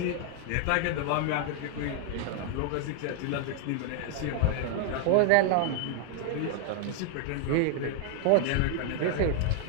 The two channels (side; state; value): both; different; correlation 0.00